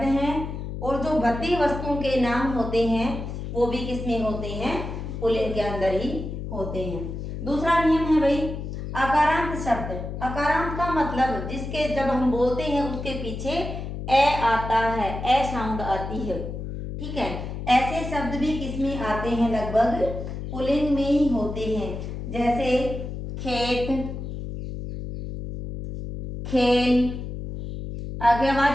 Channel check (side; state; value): left; noise; hum, 7 dB below the sound